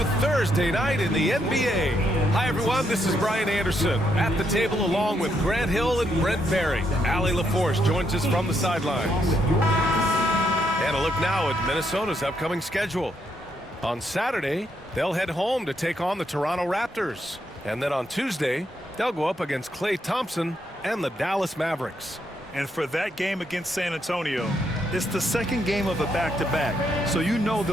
Thursday night in the NBA. Hi, everyone. This is Brian Anderson at the table along with Grant Hill and Brent Barry. Allie LaForce joins us from the sidelines. And a look now at Minnesota's upcoming schedule. On Saturday, they'll head home to take on the Toronto Raptors. And then on Tuesday, they'll go up against Klay Thompson and the Dallas Mavericks. And for that game against San Antonio, it's the second game of a back-to-back. So you know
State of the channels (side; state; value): both; normal; correlation 0.77